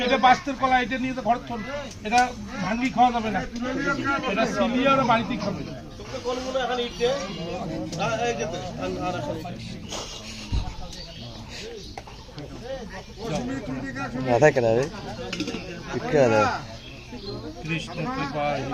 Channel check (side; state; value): both; identical; correlation 1.00